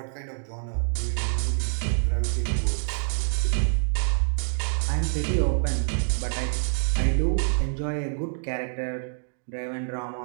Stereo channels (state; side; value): silent; left; digital silence